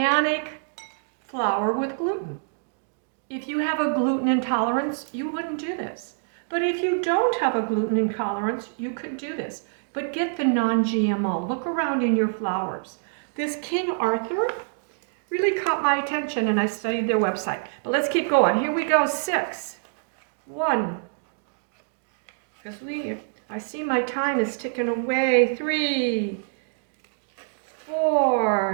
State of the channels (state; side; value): silent; left; digital silence